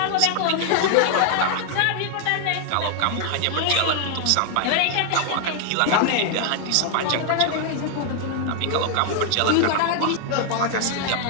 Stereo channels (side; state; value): both; different; correlation 0.00